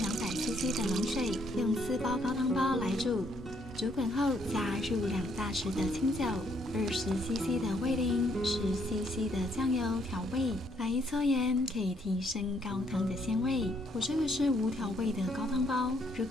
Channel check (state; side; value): normal; both; correlation 0.70